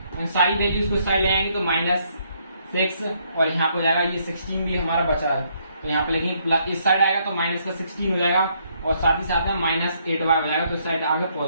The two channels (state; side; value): inverted; both; correlation -0.71